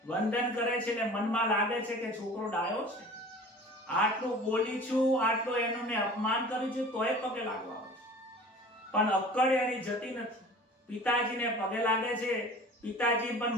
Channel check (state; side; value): normal; both; correlation 0.42